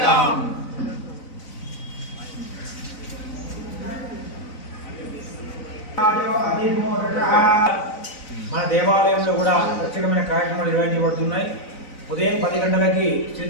మన దేవాలయంలో కూడా ప్రత్యేకమైన కార్యక్రమాలు నిర్వహించబడుతున్నాయి. ఉదయం 10 గంటలకి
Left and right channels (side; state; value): right; late; 4.0 ms